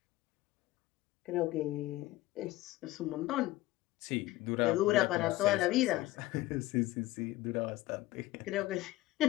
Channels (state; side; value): quieter; right; 17.5 dB